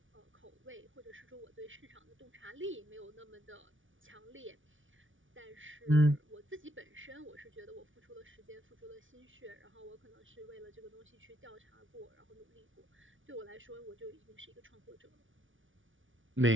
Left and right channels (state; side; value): late; left; 0.57 ms